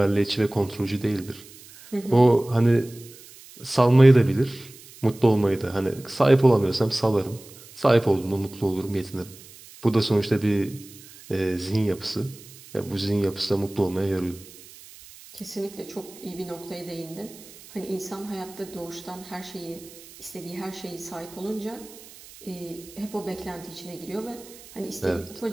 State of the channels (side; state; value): right; noise; hiss, 20 dB below the sound